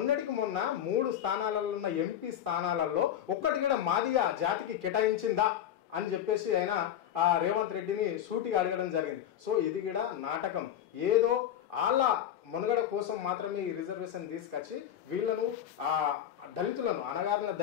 మొన్న 3 స్థానాలలో ఉన్న ఎంపీ స్థానాలలో ఒక్కటి కూడా మాదిగా జాతికి కేటాయించిందా అని చెప్పేసి ఆయన రేవంత్ రెడ్డిని సూటిగా అడగడం జరిగింది. సో ఇది కూడా నాటకం. ఏదో వాళ్ళ మనుగడ కోసం మాత్రమే ఈ రిజర్వేషన్ తీసుకొచ్చి వీళ్ళను దళితులను, అణగారిన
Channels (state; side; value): quieter; right; 10.4 dB